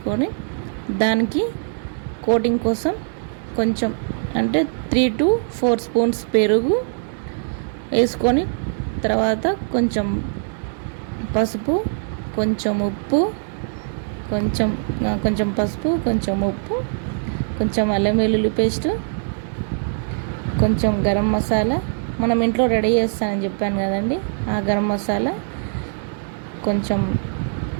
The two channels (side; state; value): left; silent; digital silence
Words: దానికి కోటింగ్ కోసం కొంచెం అంటే 3 to 4 స్పూన్స్ పెరుగు వేసుకొని, తర్వాత కొంచెం పసుపు, కొంచెం ఉప్పు, కొంచెం పసుపు, కొంచెం ఉప్పు, కొంచెం అల్లం వెల్లుల్లి పేస్టు, కొంచెం గరం మసాలా, మనం ఇంట్లో రెడీ చేస్తానని చెప్పాను కదండి, ఆ గరం మసాలా, కొంచెం